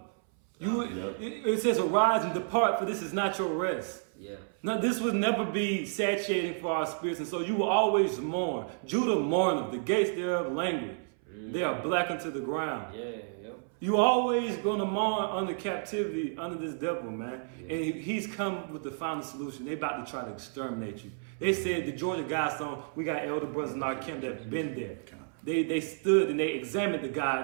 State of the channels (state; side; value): silent; left; 57 dB below the other